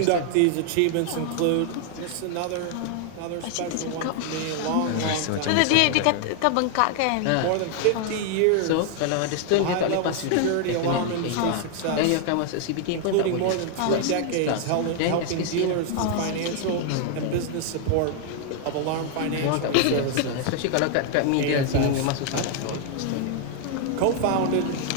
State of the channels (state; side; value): different; both; correlation 0.00